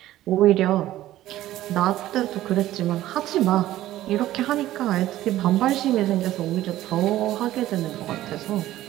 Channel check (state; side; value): quieter; left; 14.4 dB